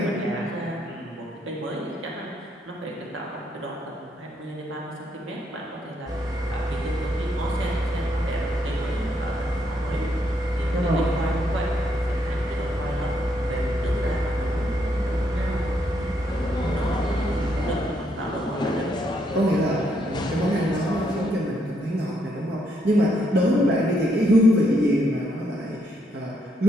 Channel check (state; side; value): normal; both; correlation 0.75